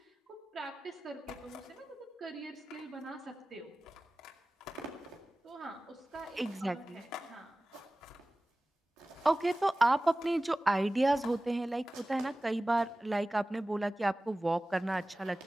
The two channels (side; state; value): both; normal; correlation 0.97